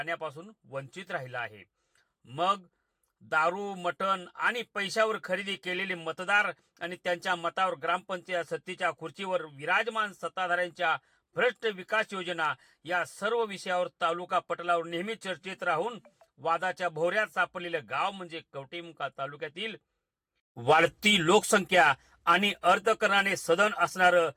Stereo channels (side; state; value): both; identical; correlation 1.00